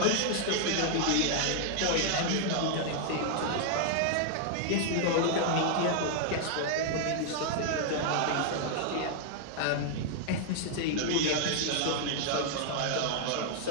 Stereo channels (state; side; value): different; both; correlation -0.01